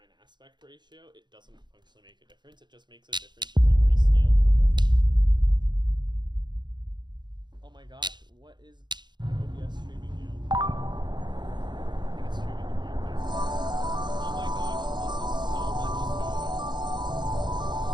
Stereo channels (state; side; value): late; left; 0.21 ms